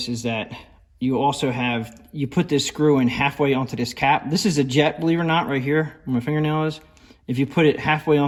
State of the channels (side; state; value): both; identical; correlation 1.00